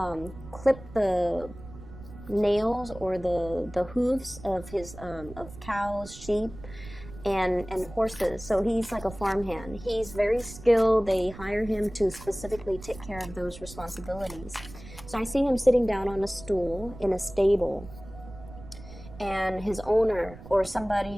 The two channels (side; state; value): right; noise; rumble, 16 dB below the sound